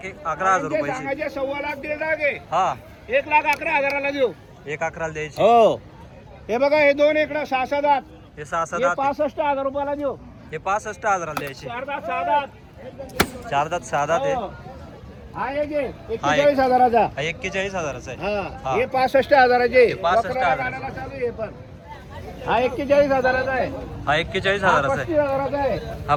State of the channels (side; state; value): both; identical; correlation 1.00